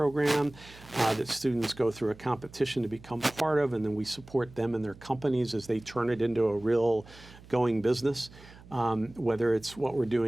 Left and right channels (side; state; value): right; noise; hum, 21 dB below the sound